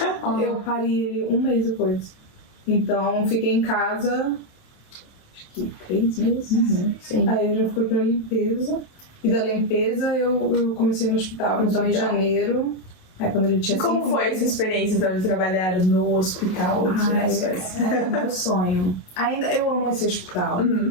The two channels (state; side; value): late; right; 28 ms